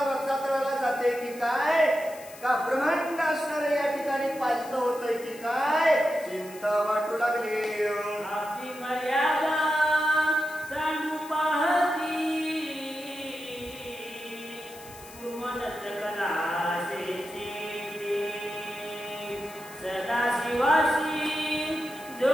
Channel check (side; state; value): left; noise; hiss, 18 dB below the sound